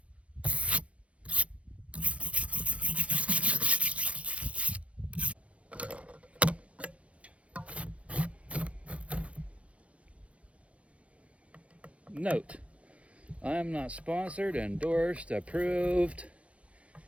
Note, I am not sponsored, endorsed, approved,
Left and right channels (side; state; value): left; late; 0.063 ms